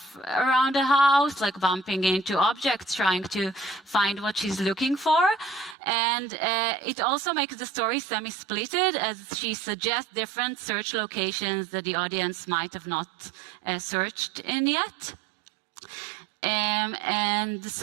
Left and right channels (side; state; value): left; drops out; at 5.8 s